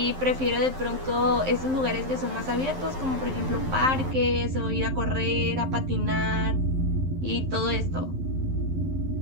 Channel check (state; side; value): late; left; 11 ms